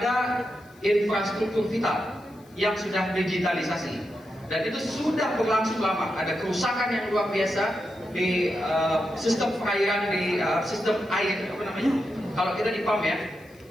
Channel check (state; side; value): noise; left; hiss, 29 dB below the sound